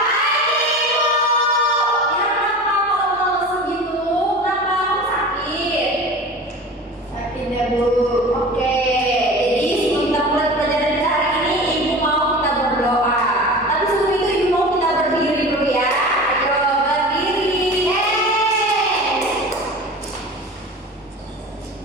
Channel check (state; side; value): normal; both; correlation 0.35